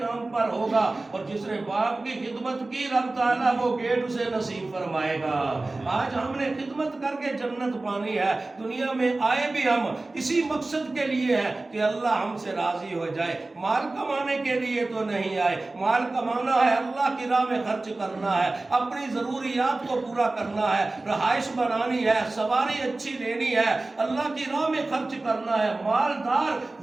نام پر ہوگا، اور جس نے باپ کی خدمت کی رب تعالیٰ وہ گیٹ اسے نصیب فرمائے گا۔ آج ہم نے خدمت کر کے جنت پانی ہے، دنیا میں آئے بھی ہم اسی مقصد کے لیے ہے کہ اللہ ہم سے راضی ہو جائے، مال کمانے کے لیے تو نہیں آئے۔ مال کمانا ہے، اللہ کی راہ میں خرچ کرنا ہے، اپنی ضروریات کو پورا کرنا ہے، رہائش بنانی ہے، سواری اچھی لینی ہے، اللہ کی راہ میں خرچ کرنا ہے۔ مالدار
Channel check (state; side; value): quieter; left; 3.1 dB